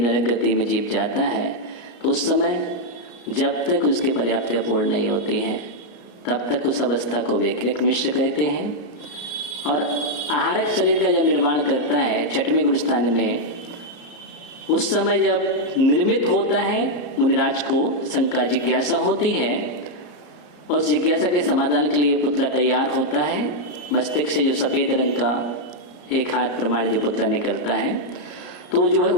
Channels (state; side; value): late; right; 34 ms